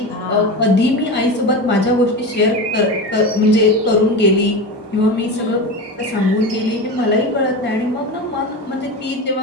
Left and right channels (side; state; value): both; normal; correlation 0.24